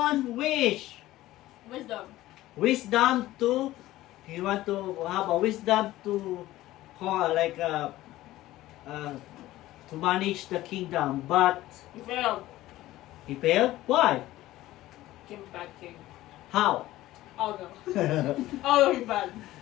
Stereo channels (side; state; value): right; quieter; 16.0 dB